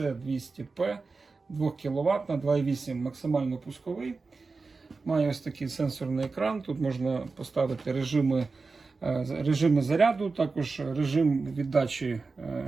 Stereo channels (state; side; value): quieter; left; 4.1 dB